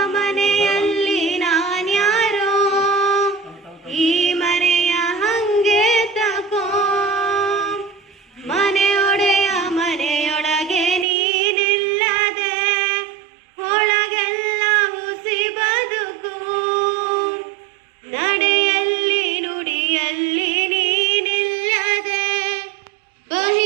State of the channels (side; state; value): left; drops out; at 11.1 s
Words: ಮನೆಯಲ್ಲಿ ನಾನ್ಯಾರೋ, ಈ ಮನೆಯ ಹಂಗೆ ತಕೋ. ಮನೆಯೊಡೆಯ ಮನೆಯೊಳಗೆ ನೀನಿಲ್ಲದೆ, ಒಳಗೆಲ್ಲ ಹುಸಿ ಬದುಕು. ನಡೆಯಲ್ಲಿ ನುಡಿಯಲ್ಲಿ ನೀನಿಲ್ಲದೆ,